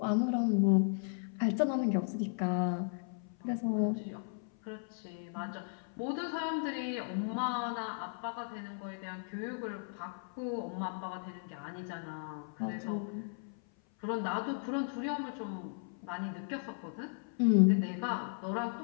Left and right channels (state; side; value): silent; right; 54 dB below the other